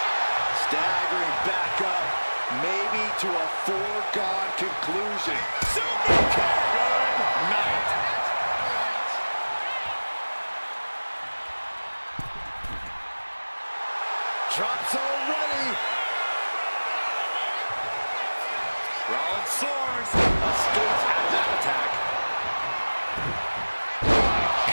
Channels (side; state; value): both; inverted; correlation -1.00